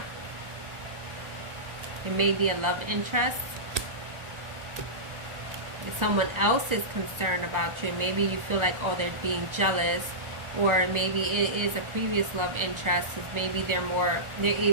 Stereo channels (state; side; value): late; left; 1.4 ms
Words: It may be a love interest. If someone else is concerned about you, maybe you feel like, oh, they're being jealous, or maybe it is a previous love interest, because maybe they're